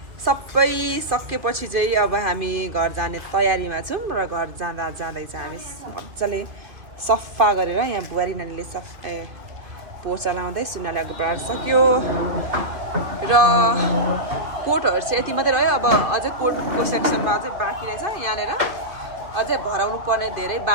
सबै सकेपछि चाहिँ अब हामी घर जाने तयारीमा छौँ र घर जाँदै चाहिँ हामी मजाले सफा गरेर यहाँ बुहारी नानीले पोचा लाउँदै सुनाले अघि बढाएर सक्यो र कोटहरू चाहिँ यति मात्रै रह्यो अब अझै कोटको सेक्सनमा अझै बाँकी रहेछ यहाँनिर अझै भराउनु पर्ने धेरै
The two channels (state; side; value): late; left; 2.5 ms